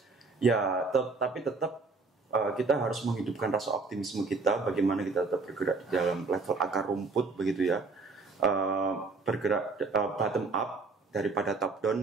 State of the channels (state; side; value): quieter; left; 4.0 dB